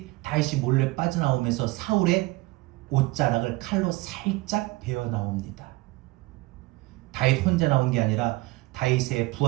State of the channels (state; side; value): quieter; left; 20.9 dB